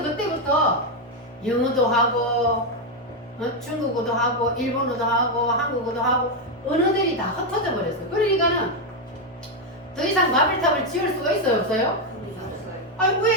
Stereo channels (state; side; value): normal; both; correlation 0.04